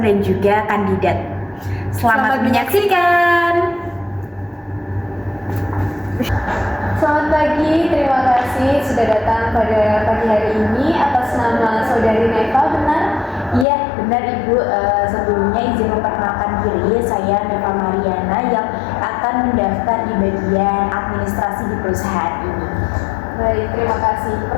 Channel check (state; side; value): drops out; right; at 13.7 s